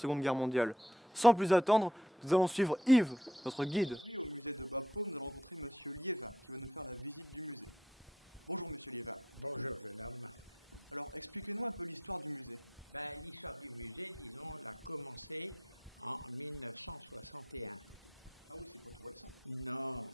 Guerre mondiale. Sans plus attendre, nous allons suivre Yves, notre guide. Aujourd'hui, au musée de Bapaume, nous allons rencontrer Monsieur Liévin, qui va nous faire la visite du musée. Bonjour Monsieur Liévin. Bonjour jeune homme. Alors, expliquez-nous un peu l'histoire du musée. L'histoire du musée, disons, l'a commencé en 1961. Ah oui, c'est pas tout récent. Non.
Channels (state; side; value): normal; both; correlation 0.69